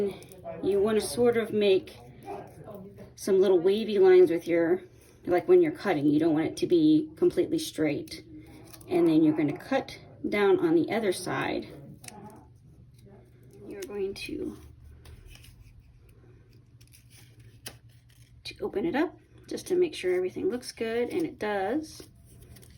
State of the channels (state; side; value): identical; both; correlation 1.00